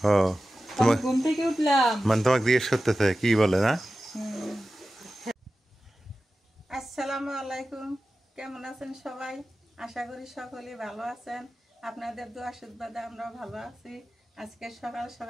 ও তোমার ঘুম থেকে উঠলাম মানে তোমাকে জিজ্ঞেস করতেছে কি বলে না? আসসালামু আলাইকুম, কেমন আছেন সবাই? আশা করি সকলেই ভালো আছেন। আপনাদের দোয়া আশীর্বাদে আমরা ভালো আছি। আজকে সকাল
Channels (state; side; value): normal; both; correlation 0.94